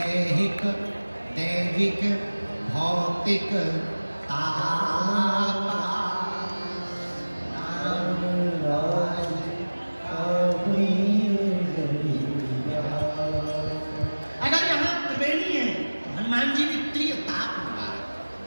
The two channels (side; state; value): both; inverted; correlation -1.00